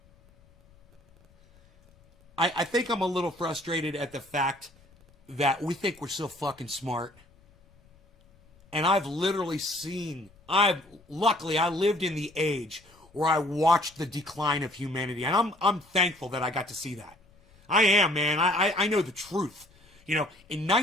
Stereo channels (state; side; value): noise; left; rumble, 29 dB below the sound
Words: I think I'm a little frustrated at the fact that we think we're so fucking smart. And I've literally seen, luckily I lived in the age where I watched the decline of humanity. And I'm thankful that I got to see that. I am, man. I know the truth. You know, in